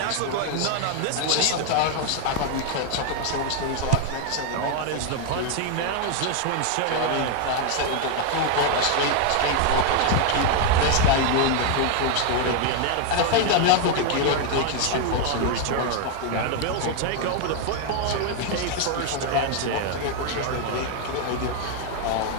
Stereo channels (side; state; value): both; different; correlation 0.00